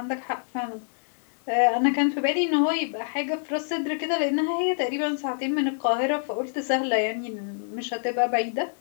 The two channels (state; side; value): silent; right; digital silence